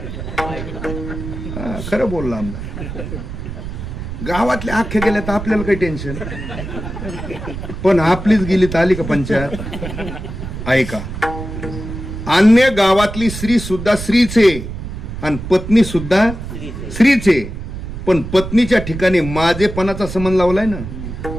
खरं बोलला आमदार. गावातल्या अख्ख्या गेल्या तर आपल्याला काही टेन्शन, पण आपलीच गेली तर आली का पंचायत. ऐका, अन्य गावातली स्त्री सुद्धा स्त्रीचे आणि पत्नी सुद्धा स्त्रीचे, पण पत्नीच्या ठिकाणी माझेपणाचा संबंध लावलाय ना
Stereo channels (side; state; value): right; noise; rumble, 8 dB below the sound